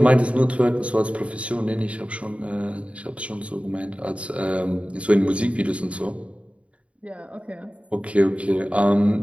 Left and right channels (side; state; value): left; late; 0.063 ms